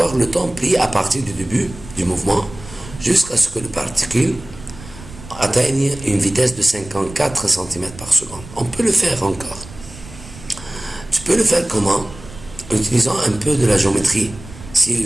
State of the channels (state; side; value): noise; right; rumble, 17 dB below the sound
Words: le temps pris à partir du début du mouvement jusqu'à ce que le particule atteigne une vitesse de 54 cm par seconde. On peut le faire encore. Tu peux le faire comment? En utilisant un peu de la géométrie. Si